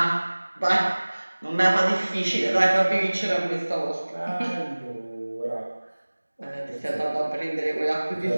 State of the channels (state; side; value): inverted; both; correlation -1.00